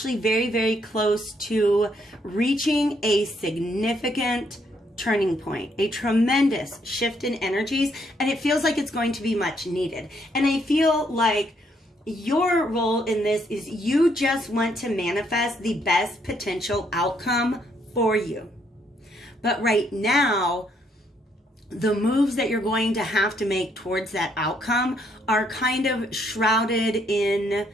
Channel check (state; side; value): normal; both; correlation 0.71